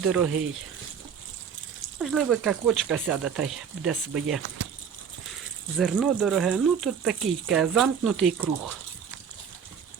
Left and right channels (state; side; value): quieter; left; 7.2 dB